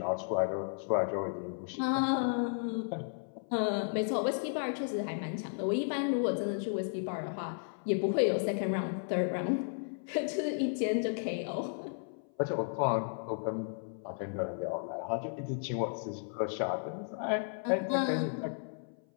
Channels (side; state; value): right; silent; 55 dB below the other